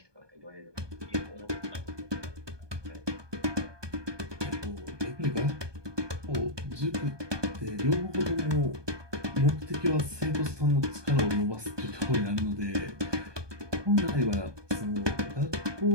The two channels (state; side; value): late; left; 1.2 ms